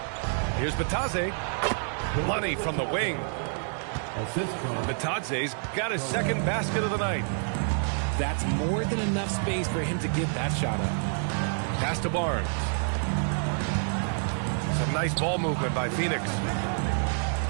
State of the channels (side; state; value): left; silent; 59 dB below the other